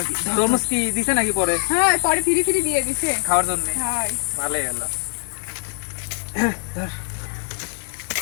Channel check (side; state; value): right; silent; digital silence